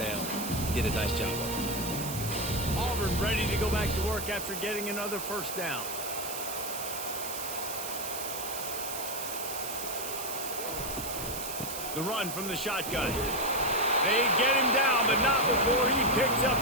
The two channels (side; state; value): right; noise; hiss, 7 dB below the sound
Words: Did a nice job of it. Auburn ready to go back to work after getting another first down. The run from the shotgun. They get him down, but not before he picks up